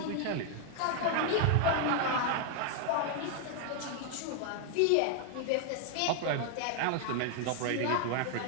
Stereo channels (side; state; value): both; different; correlation 0.00